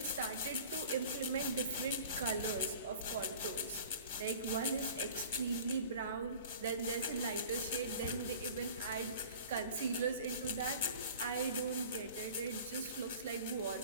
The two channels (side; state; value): both; inverted; correlation -0.43